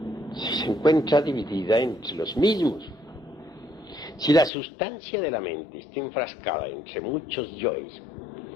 si se encuentra dividida entre los mismos, si la sustancia de la mente está enfrascada entre muchos yoes,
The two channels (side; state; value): right; drops out; at 4.5 s